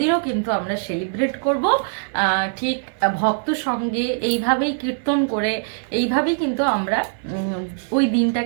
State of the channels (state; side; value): silent; left; 57 dB below the other